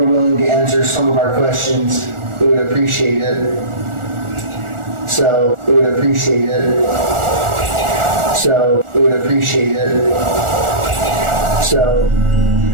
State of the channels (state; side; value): late; left; 1.4 ms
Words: willing to answer some of our questions, we would appreciate it. So we would appreciate it.